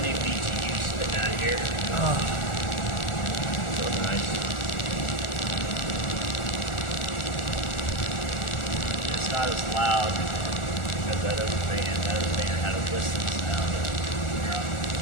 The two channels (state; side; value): late; right; 1.4 ms